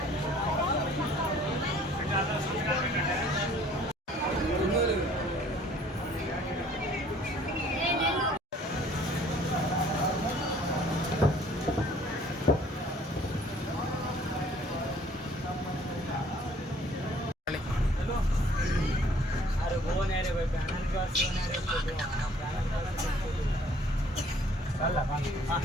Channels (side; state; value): both; normal; correlation 0.56